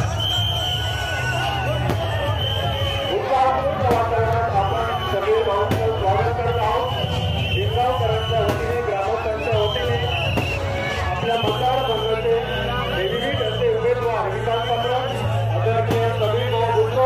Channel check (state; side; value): identical; both; correlation 1.00